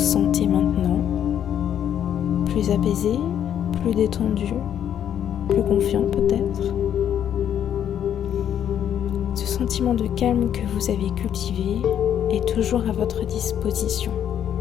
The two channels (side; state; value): right; quieter; 9.7 dB